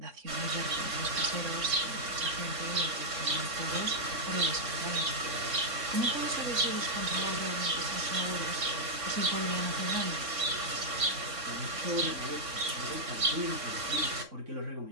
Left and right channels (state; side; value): late; left; 3.6 ms